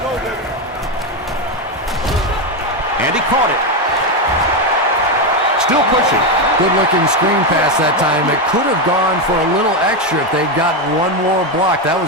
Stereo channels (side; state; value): both; normal; correlation 0.09